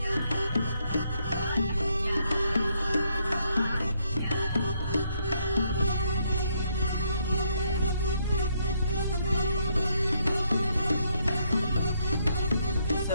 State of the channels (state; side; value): inverted; both; correlation -0.73